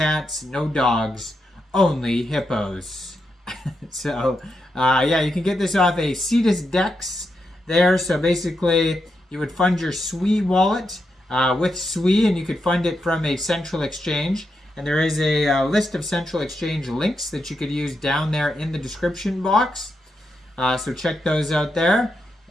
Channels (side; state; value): both; normal; correlation 0.84